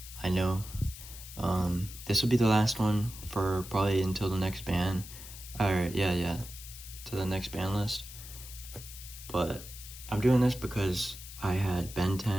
I know this will be the last one for probably until the next ban. Alright, yeah, to the next ban list. But I'm doing this because I had Ben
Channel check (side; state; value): left; noise; hiss, 14 dB below the sound